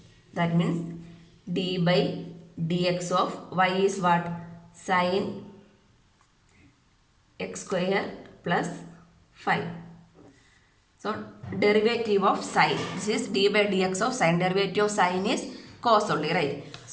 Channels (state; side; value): identical; both; correlation 1.00